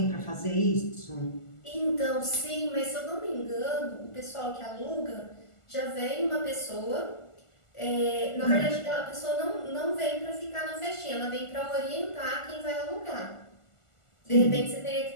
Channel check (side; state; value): right; late; 1.4 ms